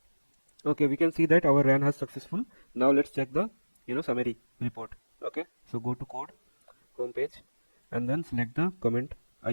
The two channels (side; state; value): both; inverted; correlation -1.00